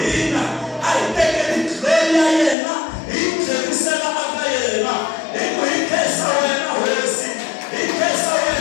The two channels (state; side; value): drops out; right; at 2.6 s